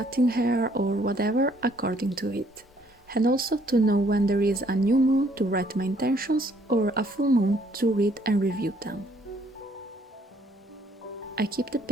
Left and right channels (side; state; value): both; normal; correlation 0.64